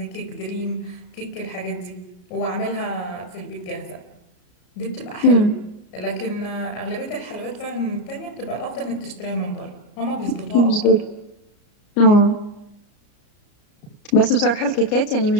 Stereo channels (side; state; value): right; late; 34 ms